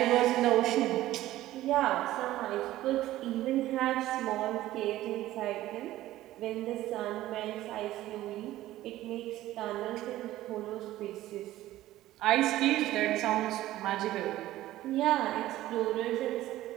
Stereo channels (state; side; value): quieter; left; 15.1 dB